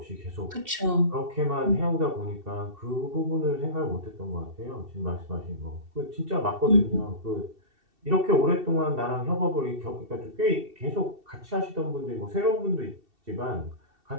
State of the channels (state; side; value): late; left; 2.7 ms